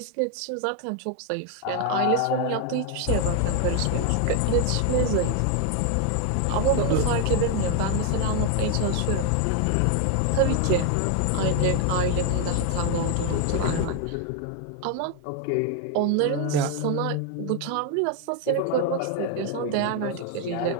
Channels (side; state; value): both; different; correlation 0.01